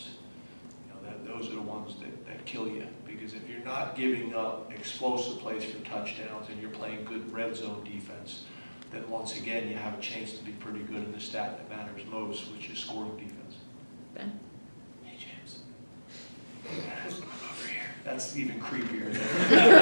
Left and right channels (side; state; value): both; inverted; correlation -1.00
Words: Those are the ones that kill you. Because if you're not giving up explosive plays for touchdowns and you're playing good red zone defense, then once again you have a chance to be pretty good in the stat that matters most, which is scoring defense. Ben? Hey, James. Over here. That's even creepier